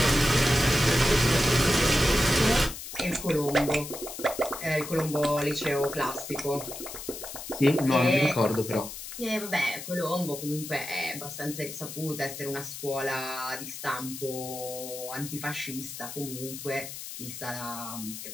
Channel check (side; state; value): left; noise; hiss, 10 dB below the sound